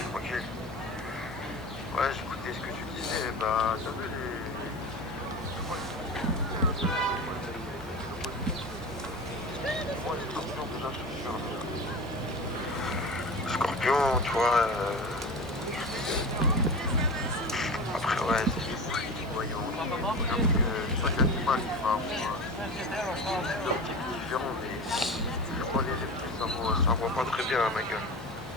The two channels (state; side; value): normal; both; correlation 0.30